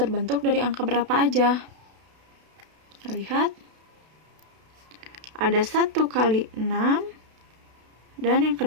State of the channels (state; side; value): late; left; 32 ms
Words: dari angka berapa aja. Kita lihat. Ada 1 kali 6. Dan yang